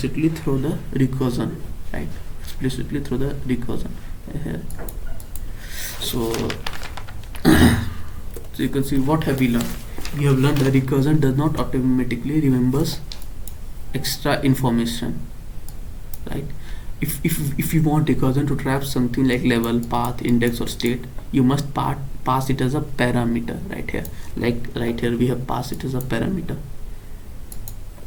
through the recursion, right? Explicitly through the recursion here. So you can see what have we learned. We have learned that recursion does not automatically remembers extra information, right? If you want recursion to trap something like level, path, index, or state, you must pass it as a parameter, right here. Like right here we have passed it as a parameter.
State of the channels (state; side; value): identical; both; correlation 1.00